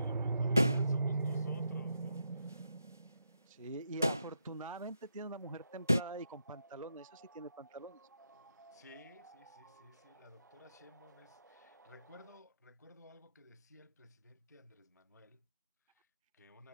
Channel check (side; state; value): both; inverted; correlation -0.82